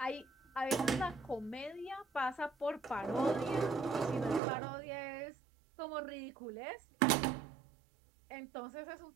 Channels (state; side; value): drops out; left; at 4.4 s